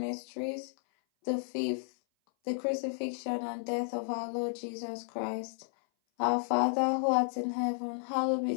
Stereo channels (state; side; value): silent; right; 56 dB below the other